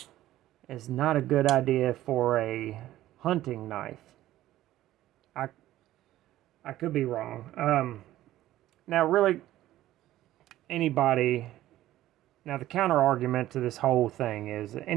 is not a good idea for a hunting knife. I could be wrong. Now, really, anybody... Now, the counter argument to this whole thing is that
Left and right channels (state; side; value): quieter; left; 14.5 dB